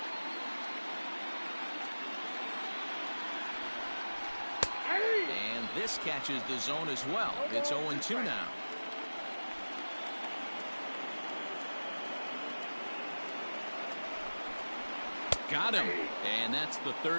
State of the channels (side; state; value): both; inverted; correlation -1.00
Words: And this catches the zone as well. It's 0-2 now. Got him. And that's the